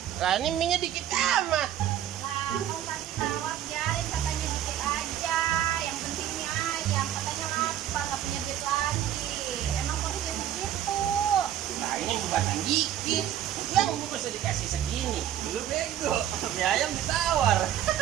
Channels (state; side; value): quieter; left; 11.2 dB